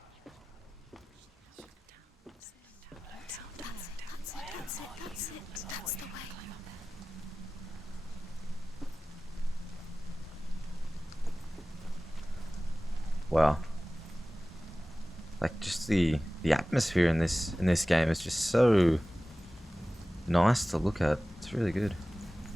That's the way. Wow. Like just the atmosphere in this game is just so nice to look at. It's really good.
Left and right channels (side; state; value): both; normal; correlation 0.97